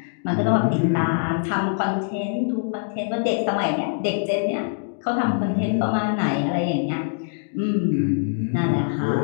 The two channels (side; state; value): right; silent; digital silence